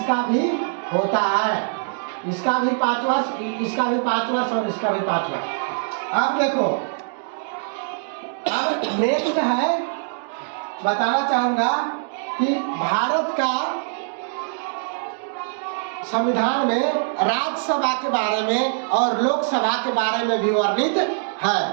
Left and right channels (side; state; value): left; silent; digital silence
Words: भी होता है। इसका भी 5 वर्ष, इसका भी 5 वर्ष और इसका भी 5 वर्ष। अब देखो, अब नेक्स्ट है, बताना चाहूंगा कि भारत का संविधान में राज्यसभा के बारे में और लोकसभा के बारे में भी वर्णित है।